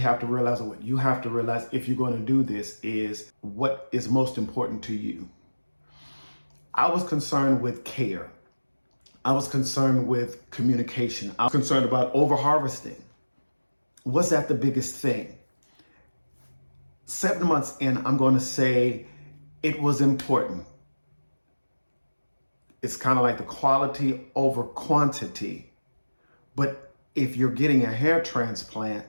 to realize, or what you have to realize if you're going to do this, is what is most important to you. I was concerned with care. I was concerned with communication. I was concerned about over-harvesting. Was that the biggest thing? 7 months in, I'm going to say it was important. It's kind of like the quality over quantity. But if you're getting a hair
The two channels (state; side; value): inverted; both; correlation -1.00